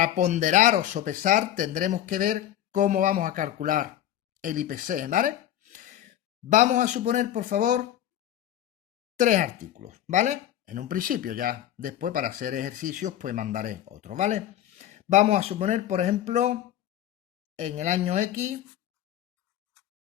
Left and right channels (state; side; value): quieter; right; 11.8 dB